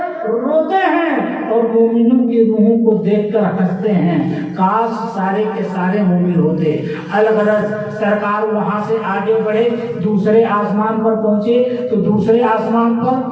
روتے ہیں اور مومنوں کی روحوں کو دیکھ کر ہنستے ہیں، کاش سارے کے سارے مومن ہوتے۔ الغرض سرکار وہاں سے آگے بڑھے، دوسرے آسمان پر پہنچے تو دوسرے آسمان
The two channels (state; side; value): identical; both; correlation 1.00